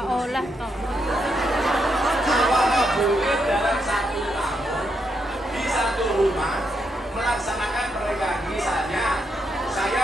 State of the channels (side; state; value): both; normal; correlation 0.80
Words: toh. Apakah boleh dalam 1 tahun di satu rumah melaksanakan pernikahan? Misalnya